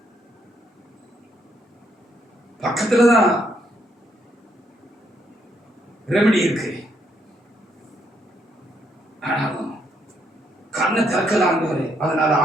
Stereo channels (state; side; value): normal; both; correlation 0.74